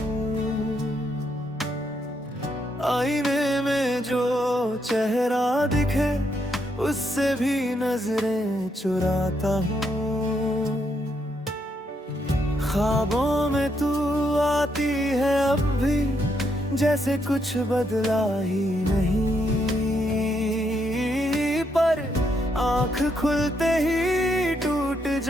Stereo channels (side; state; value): both; normal; correlation 0.77